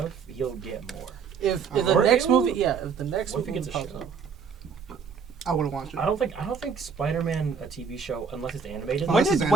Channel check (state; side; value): quieter; left; 6.0 dB